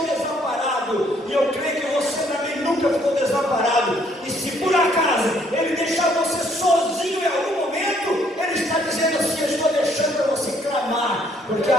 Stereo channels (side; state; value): both; normal; correlation 0.66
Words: desamparado, e eu creio que você também nunca ficou desamparado, e se por acaso Ele deixar você sozinho em algum momento, Ele está dizendo assim, eu estou deixando para você clamar, porque